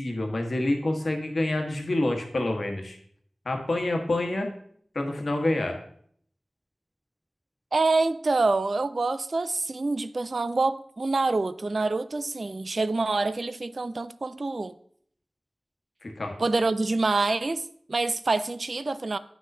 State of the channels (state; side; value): normal; both; correlation 0.95